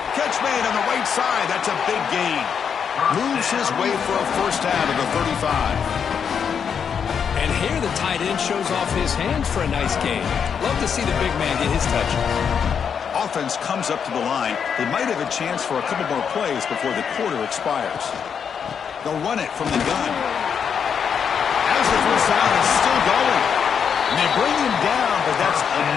Catch made on the right side. That's a big gain. Moves his way for a first down to the 35. And here the tight end shows off his hands for a nice gain. Love to see the big man get his touch. Offense comes up to the line. They might have a chance for a couple more plays before the quarter expires. They'll run it from the gun. As the first down is still going. And they bring him down, but that's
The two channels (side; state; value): right; quieter; 7.1 dB